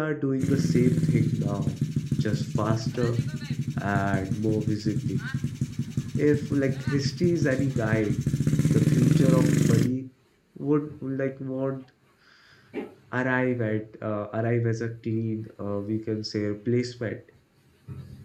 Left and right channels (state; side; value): identical; both; correlation 1.00